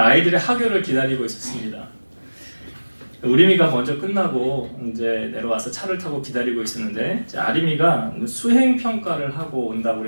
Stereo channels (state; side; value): inverted; both; correlation -1.00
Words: 하교를 기다리고 있었습니다. 우림이가 먼저 끝나고 이제 내려와서 차를 타고 기다리고 있었는데 아림이가 수행 평가를 하고 온다고